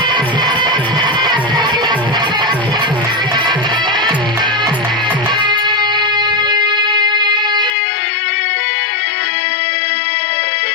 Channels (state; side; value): drops out; right; at 7.7 s